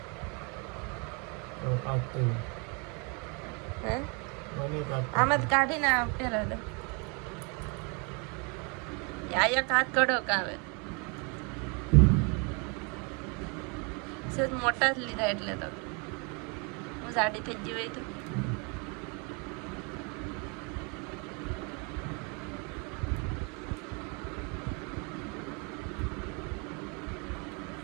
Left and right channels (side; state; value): left; quieter; 32.9 dB